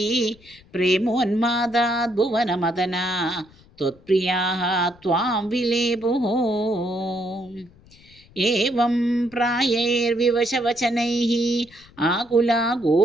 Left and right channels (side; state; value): left; noise; rumble, 27 dB below the sound